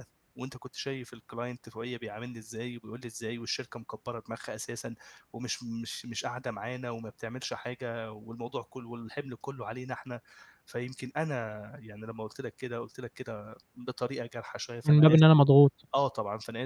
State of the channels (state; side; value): identical; both; correlation 1.00